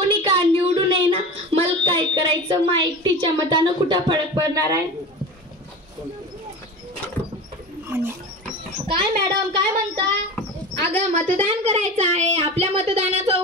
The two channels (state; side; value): normal; both; correlation 0.30